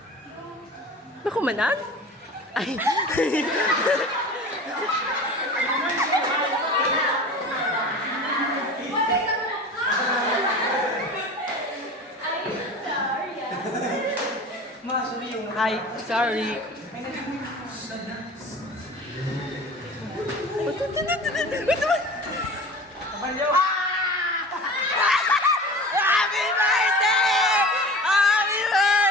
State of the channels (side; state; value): both; normal; correlation 0.37